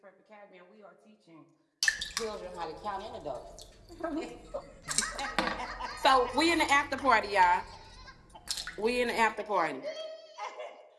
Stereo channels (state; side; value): identical; both; correlation 1.00